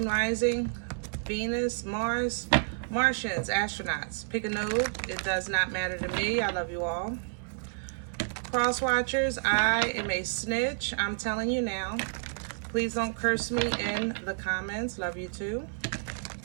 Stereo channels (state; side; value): silent; left; 58 dB below the other